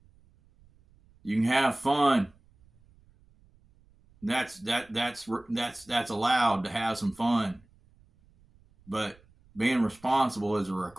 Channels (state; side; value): noise; right; rumble, 30 dB below the sound